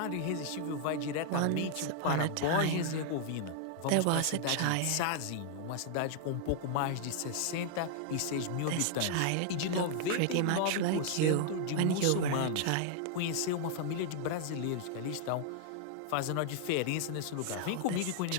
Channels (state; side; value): different; both; correlation 0.00